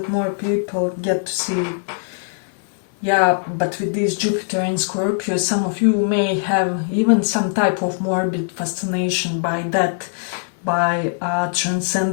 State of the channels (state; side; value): silent; right; 60 dB below the other